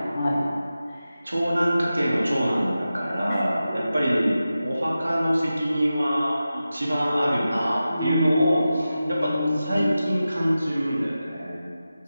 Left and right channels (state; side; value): inverted; both; correlation -0.93